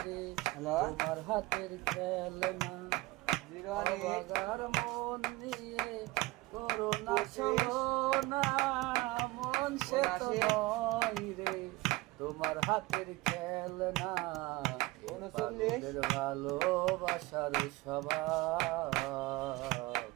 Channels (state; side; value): quieter; left; 20.9 dB